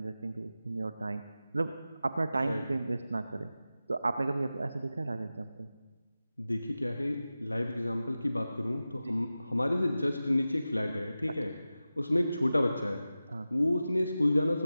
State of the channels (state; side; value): inverted; both; correlation -0.94